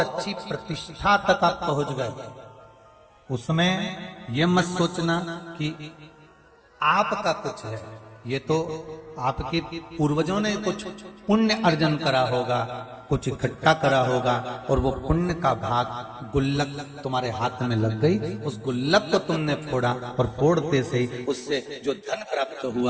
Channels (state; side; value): identical; both; correlation 1.00